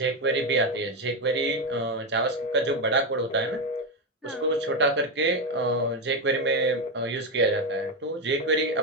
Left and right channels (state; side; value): normal; both; correlation 0.10